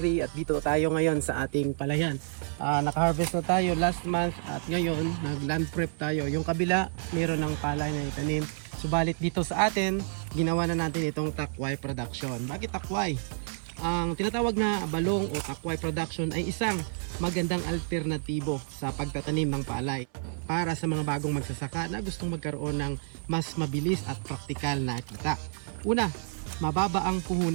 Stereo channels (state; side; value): silent; left; 58 dB below the other